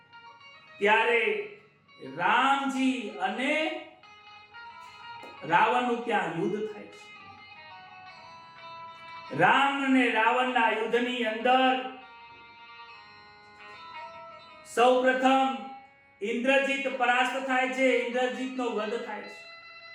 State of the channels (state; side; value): identical; both; correlation 1.00